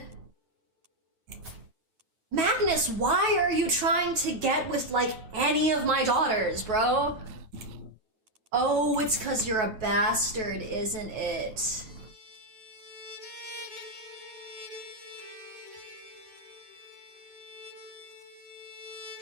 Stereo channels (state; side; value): late; left; 9.2 ms